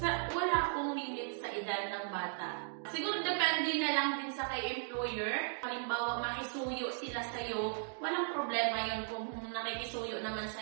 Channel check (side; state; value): left; silent; digital silence